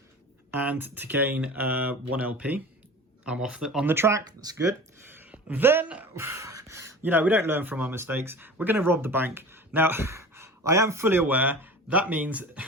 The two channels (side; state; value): both; normal; correlation 0.37